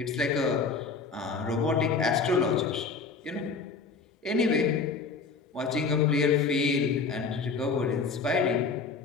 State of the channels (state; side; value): quieter; right; 4.7 dB